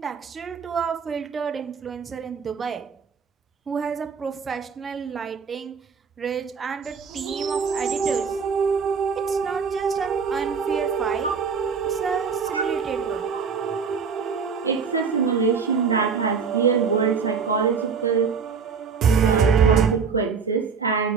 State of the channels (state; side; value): quieter; left; 5.9 dB